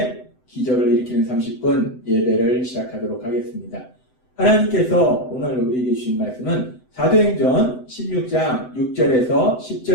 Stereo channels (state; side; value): late; right; 7.9 ms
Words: 기적을 일으키는 30분 예배를 시작하도록 하겠습니다. 하나님께서 오늘 우리에게 주신 말씀은 사도행전 16장 6절에서